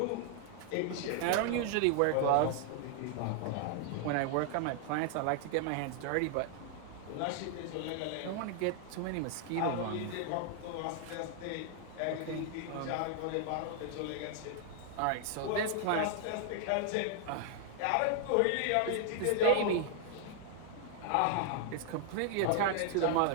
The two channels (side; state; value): both; different; correlation 0.00